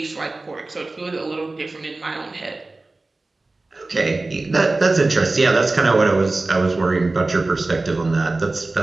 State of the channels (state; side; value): quieter; left; 3.2 dB